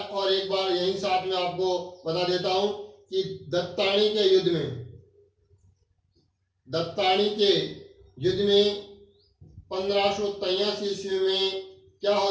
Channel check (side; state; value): both; identical; correlation 1.00